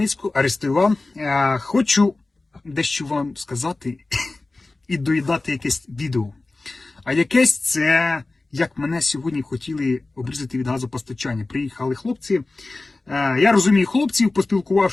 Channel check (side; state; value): right; quieter; 3.2 dB